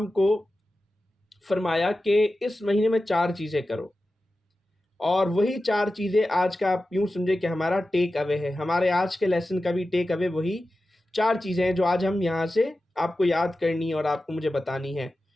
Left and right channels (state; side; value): normal; both; correlation 0.93